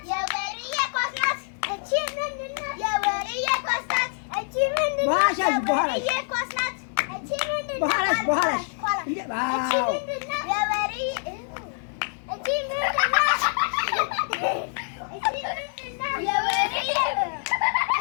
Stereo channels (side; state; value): right; silent; digital silence